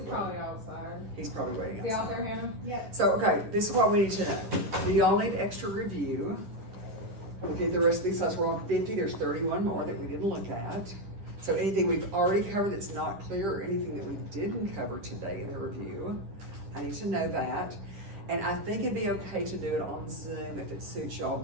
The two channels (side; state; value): left; late; 10 ms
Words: probably waiting. outside. He's probably waiting Is he out outside. there, Hannah? Yeah. So, okay, this is what we need to know. We all need extra review. Okay, the rest of these slides, we're on 50, there's 31 more that we didn't look at. So anything we've already covered that's not clear, or anything that we didn't cover today in the review, I need to know that. And I think it'd be okay to do it on Zoom if it suits y'all